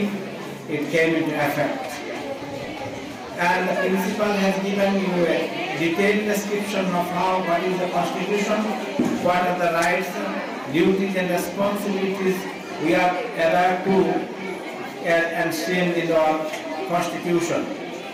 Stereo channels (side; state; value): both; identical; correlation 1.00